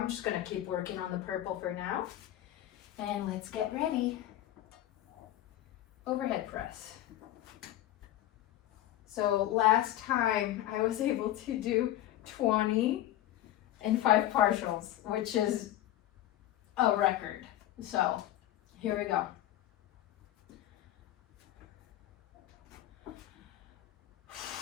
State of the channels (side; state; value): right; quieter; 13.7 dB